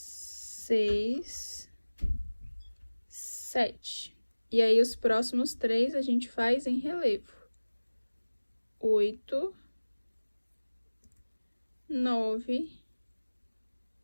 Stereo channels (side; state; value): both; inverted; correlation -1.00